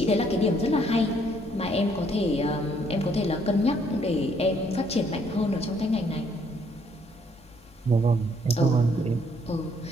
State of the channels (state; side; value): normal; both; correlation 0.67